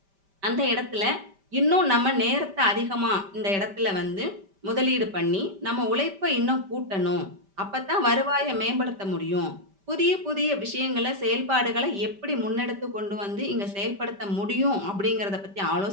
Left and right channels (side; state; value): left; late; 5.1 ms